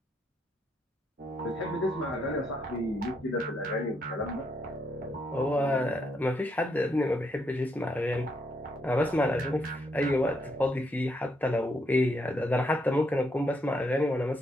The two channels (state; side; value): normal; both; correlation 0.76